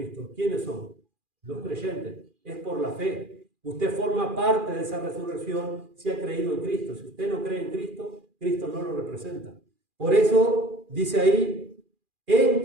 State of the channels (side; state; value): left; late; 2.4 ms